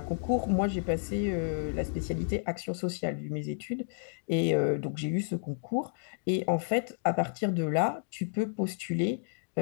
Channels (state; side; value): silent; right; digital silence